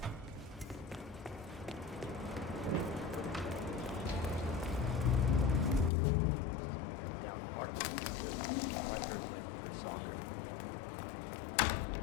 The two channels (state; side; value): drops out; right; at 5.9 s